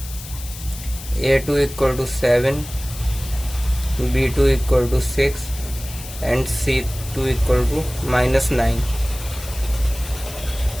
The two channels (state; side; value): noise; left; hiss, 13 dB below the sound